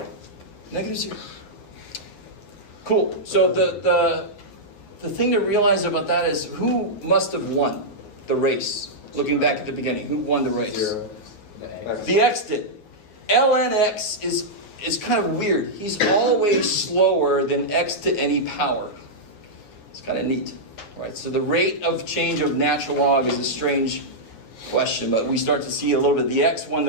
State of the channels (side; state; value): right; late; 9.1 ms